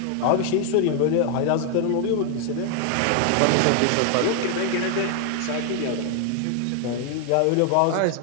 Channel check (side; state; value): both; different; correlation 0.00